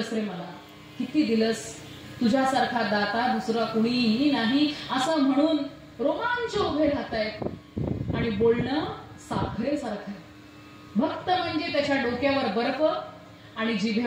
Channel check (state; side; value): identical; both; correlation 1.00